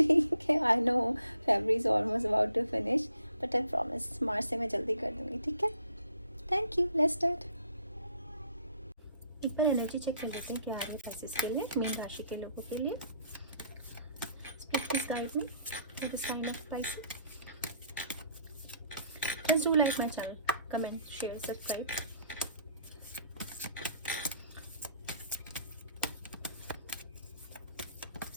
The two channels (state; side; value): inverted; both; correlation -0.64